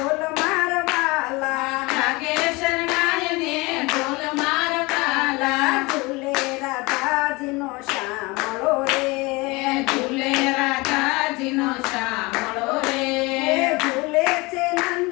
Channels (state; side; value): quieter; right; 24.4 dB